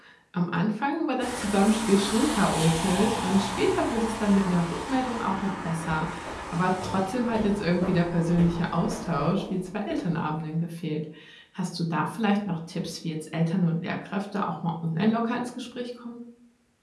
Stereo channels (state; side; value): identical; both; correlation 1.00